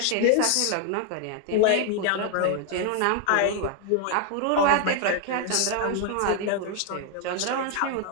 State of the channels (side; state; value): both; different; correlation 0.00